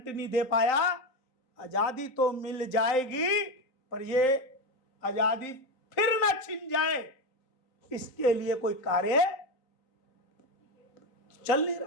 नहीं दे पाया। आजादी तो मिल जाएगी, पर ये आजादी फिर ना छिन जाए, इसके लिए कोई कार्य चल नहीं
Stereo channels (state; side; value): late; right; 3.8 ms